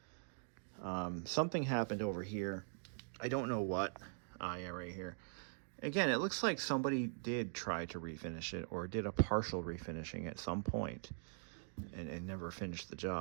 Something happened over here. I don't know what. Yeah, right here. Again, it looks like somebody did try to refinish it, or did a partial refinishing at some point and never finished the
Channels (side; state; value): left; silent; digital silence